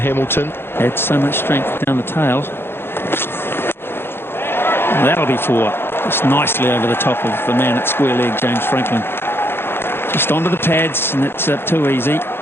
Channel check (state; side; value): late; right; 0.11 ms